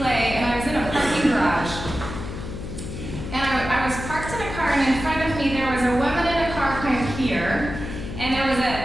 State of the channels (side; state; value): left; noise; hum, 8 dB below the sound